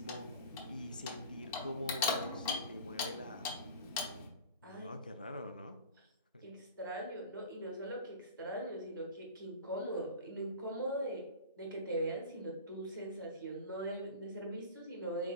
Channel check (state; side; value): inverted; both; correlation -0.36